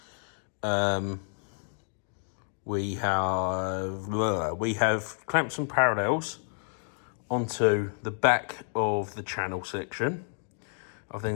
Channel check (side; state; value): right; silent; 58 dB below the other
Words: We have clamped some parallels onto the back of the channel section. I've